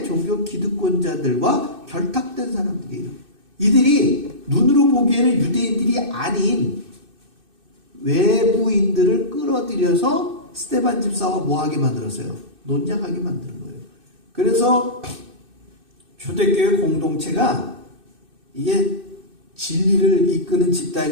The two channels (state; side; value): late; left; 2.6 ms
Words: 종교 기득권자들과 결탁된 사람들이에요. 이들이 눈으로 보기에는 유대인들이 아닌 외부인들을 끌어들여서 스테반 집사와 뭐하게 만들었어요? 논쟁하게 만드는 거예요. 그래서 초대교회 공동체가 이게 진리를 이끄는